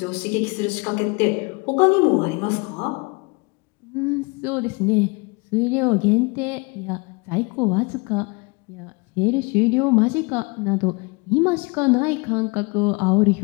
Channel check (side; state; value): right; quieter; 28.9 dB